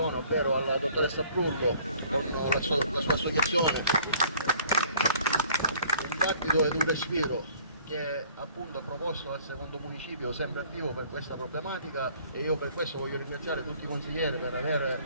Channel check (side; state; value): both; inverted; correlation -0.56